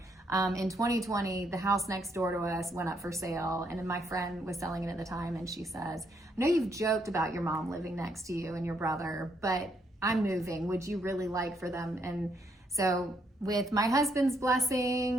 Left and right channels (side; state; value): both; normal; correlation 0.74